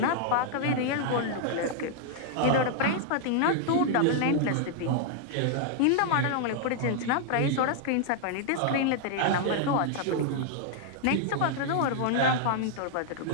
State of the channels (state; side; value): different; both; correlation 0.00